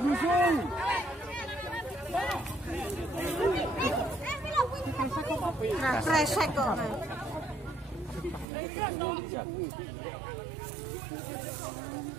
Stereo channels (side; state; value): left; drops out; at 8.5 s